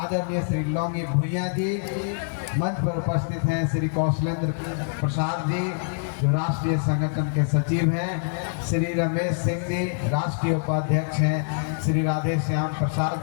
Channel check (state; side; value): silent; right; 55 dB below the other